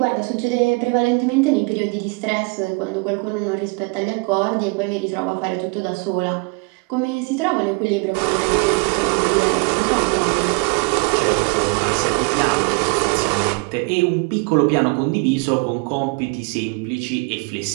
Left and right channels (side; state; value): left; quieter; 30.0 dB